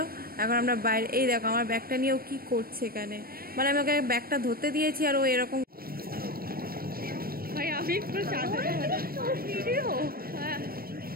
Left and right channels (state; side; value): late; left; 0.43 ms